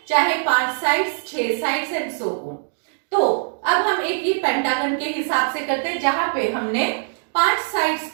चाहे 5 sides, 6 sides and so on. तो अब हम एक ही पेंटागन के हिसाब से करते हैं, जहां पे हमने 5 साइड्स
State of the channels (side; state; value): left; silent; digital silence